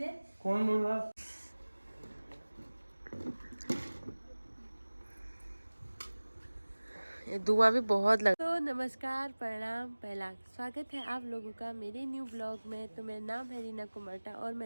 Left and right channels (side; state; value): both; inverted; correlation -1.00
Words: कौन बोल रहा? धुआं भी बहुत लग। तो नमस्कार, प्रणाम, पहला स्वागत है आप लोगों का मेरे न्यू ब्लॉग में। तो मेरा नाम है रीना कुमरटा और